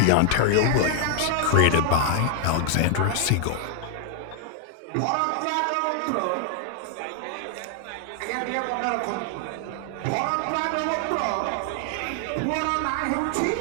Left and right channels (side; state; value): both; different; correlation 0.00